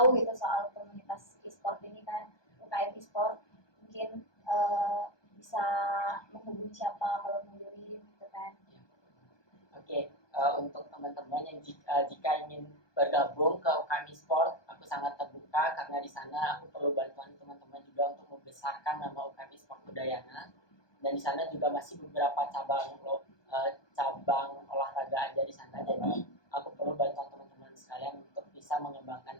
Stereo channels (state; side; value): late; right; 1.2 ms